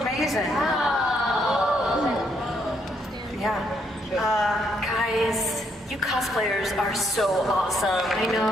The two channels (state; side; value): normal; both; correlation 0.73